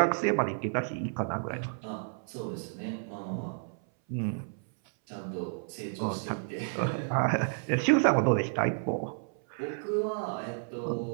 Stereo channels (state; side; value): silent; left; 57 dB below the other